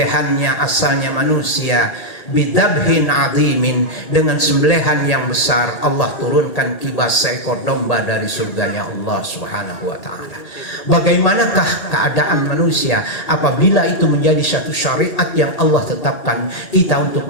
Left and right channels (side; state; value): right; late; 1.8 ms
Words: asalnya manusia bidabhin azimin, dengan sembelihan yang besar. Allah turunkan kibas seekor domba dari surganya Allah Subhanahu wa taala. Bagaimanakah keadaan manusia apabila itu menjadi satu syariat yang Allah tetapkan kita untuk